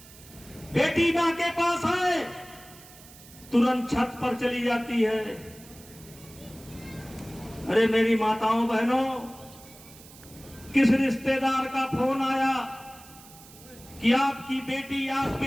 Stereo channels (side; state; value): right; noise; hiss, 21 dB below the sound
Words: बेटी मां के पास है, तुरंत छत पर चली जाती है। अरे मेरी माताओं बहनों, किस रिश्तेदार का फोन आया कि आपकी बेटी